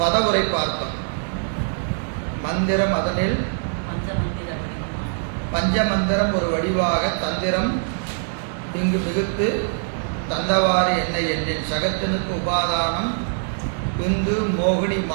பார்த்தோம். மந்திரம் அதனில் பஞ்சமந்திரம் ஒரு வடிவாக தந்திரம் இங்கு மிகுத்து தந்தவாறு என்னை எண்ணின் சகத்தினுக்கு உபாதானம் விந்து மோகினி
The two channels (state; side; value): silent; left; 63 dB below the other